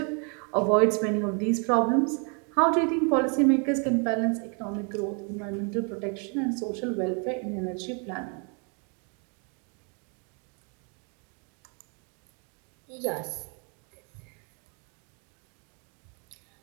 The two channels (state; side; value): quieter; left; 37.8 dB